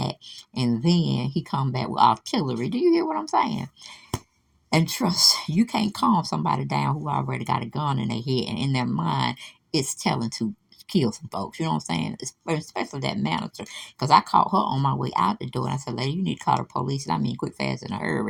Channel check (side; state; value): both; identical; correlation 1.00